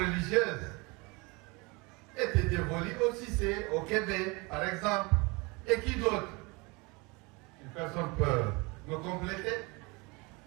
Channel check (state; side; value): quieter; left; 26.9 dB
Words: était dévolue au Cissé, au Québec, par exemple. Et qui d'autre? Une personne peut me compléter?